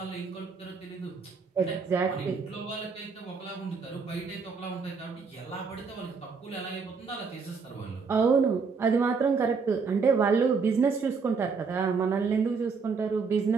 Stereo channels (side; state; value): left; quieter; 5.1 dB